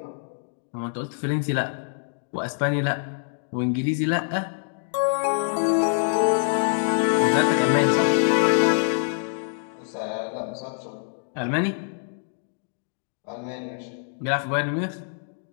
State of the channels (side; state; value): right; silent; digital silence